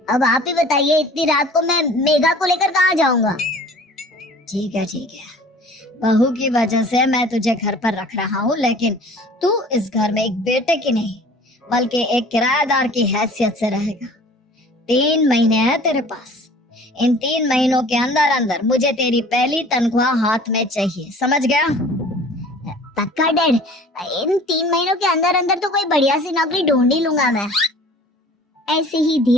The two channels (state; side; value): normal; both; correlation 0.47